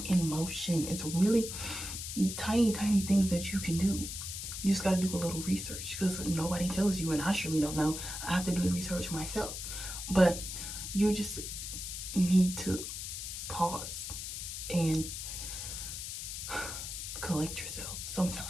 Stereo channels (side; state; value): left; noise; hiss, 6 dB below the sound